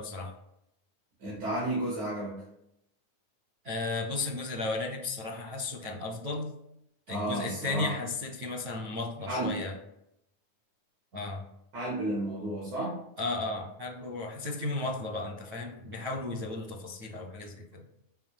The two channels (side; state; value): left; late; 9.2 ms